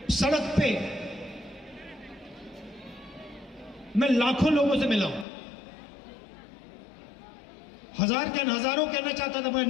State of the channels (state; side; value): drops out; right; at 5.2 s